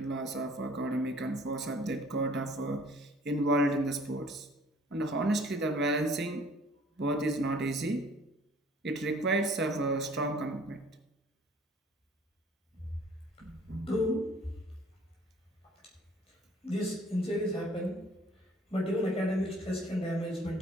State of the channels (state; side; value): normal; both; correlation 0.54